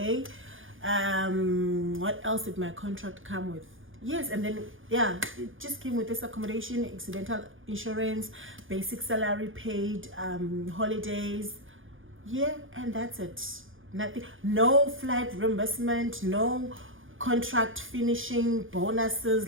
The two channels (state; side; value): late; left; 0.58 ms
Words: What else did my contract come with? Yes, and then yeah, it just came with this accommodation, accidental insurance, basic salary, paid holidays. Yeah, and that's it. Nothing, no flight reimbursement, no contract finishing